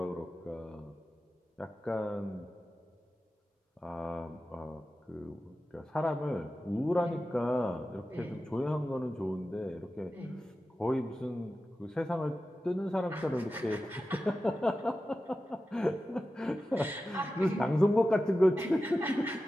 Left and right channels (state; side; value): normal; both; correlation 0.93